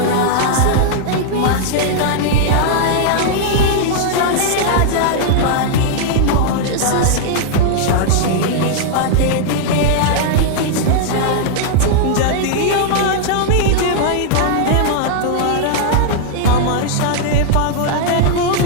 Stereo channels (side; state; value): both; different; correlation -0.01